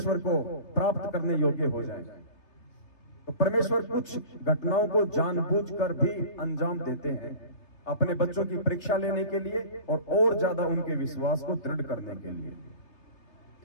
को प्राप्त करने योग्य हो जाए। तो परमेश्वर कुछ घटनाओं को जानबूझकर भी अंजाम देते हैं अपने बच्चों की परीक्षा लेने के लिए और ज्यादा उनके विश्वास को दृढ़ करने के लिए।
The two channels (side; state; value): right; late; 3.3 ms